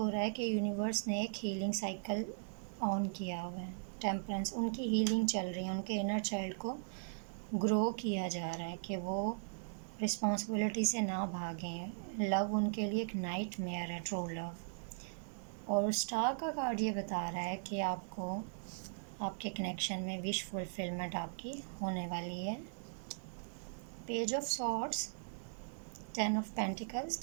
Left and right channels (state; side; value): silent; left; digital silence